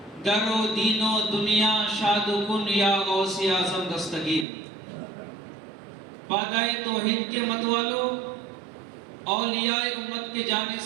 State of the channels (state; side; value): drops out; left; at 4.5 s